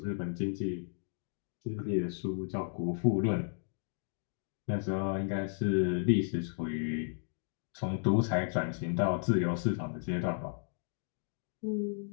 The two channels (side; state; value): right; silent; digital silence